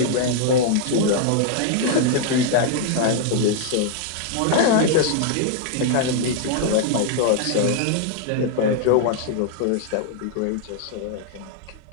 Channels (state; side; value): different; both; correlation -0.01